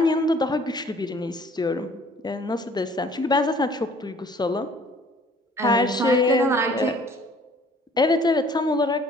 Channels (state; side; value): normal; both; correlation 0.55